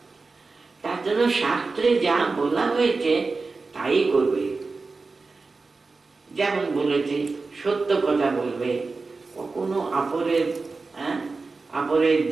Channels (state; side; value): quieter; left; 4.0 dB